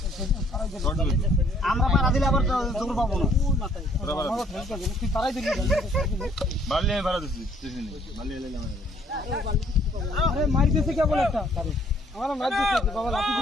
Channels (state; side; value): normal; both; correlation 0.62